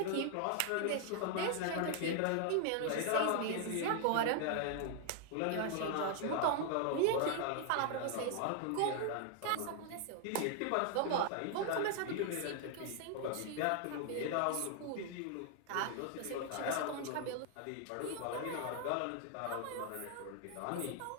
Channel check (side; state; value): both; different; correlation 0.00